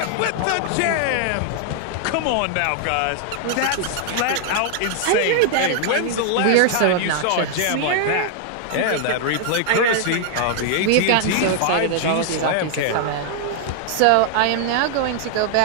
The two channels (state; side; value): different; both; correlation 0.00